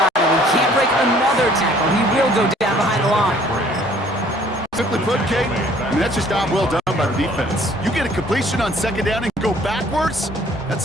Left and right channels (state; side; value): normal; both; correlation 0.57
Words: him. He can't break another tackle. He will go down behind the line. Simply put, Kate, that's just job well done by the defense. You get a completion on 2nd down and go backwards, that's